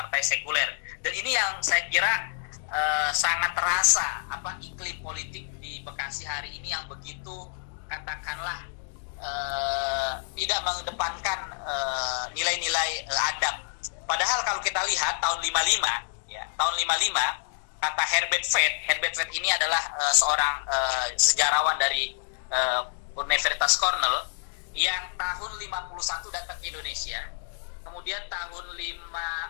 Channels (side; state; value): right; silent; digital silence